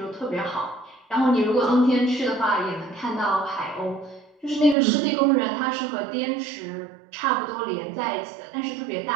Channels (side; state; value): left; drops out; at 4.8 s